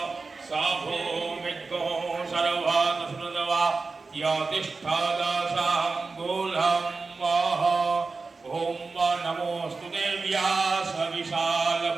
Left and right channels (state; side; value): quieter; left; 4.1 dB